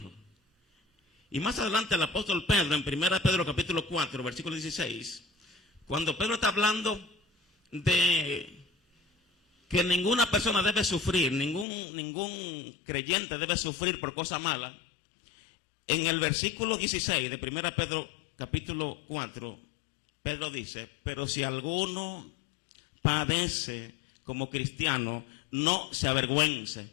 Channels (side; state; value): right; drops out; at 11.7 s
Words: Y más adelante el apóstol Pedro, en 1 Pedro capítulo 4, versículo 16, cuando Pedro está hablando de que ninguna persona debe sufrir, ningún creyente debe sufrir por cosa mala, en el versículo 16 de 1 Pedro capítulo 4, Pedro dice, pero si alguno padece como cristiano, no se avergüence,